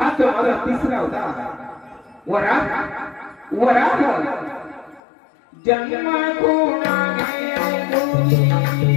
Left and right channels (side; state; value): right; drops out; at 5.0 s